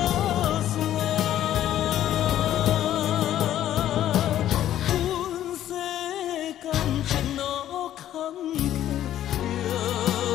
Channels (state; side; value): quieter; right; 12.0 dB